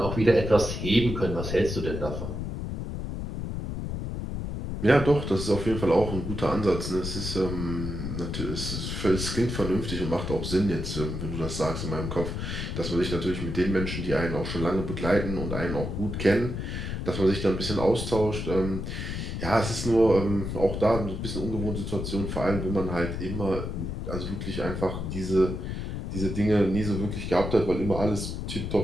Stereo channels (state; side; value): noise; left; rumble, 4 dB below the sound